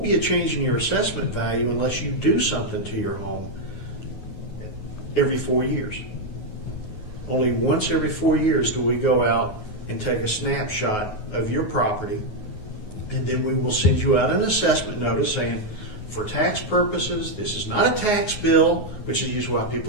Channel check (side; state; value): right; late; 9.5 ms